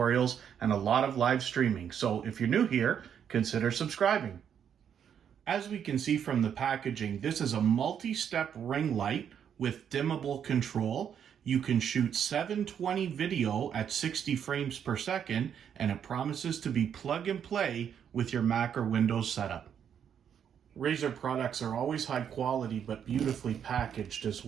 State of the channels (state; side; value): quieter; left; 8.4 dB